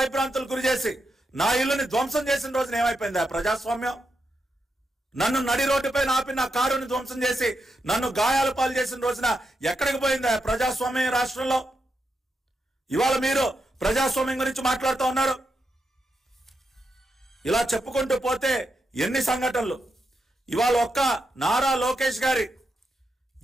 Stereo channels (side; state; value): both; normal; correlation 0.85